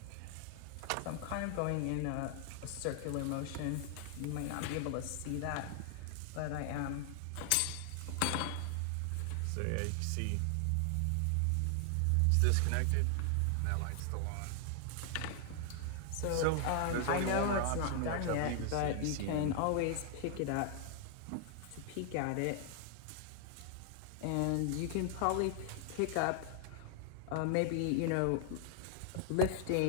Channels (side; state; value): both; different; correlation 0.00